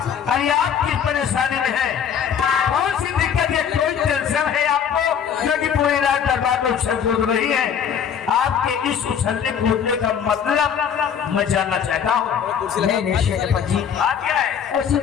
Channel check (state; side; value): quieter; right; 8.0 dB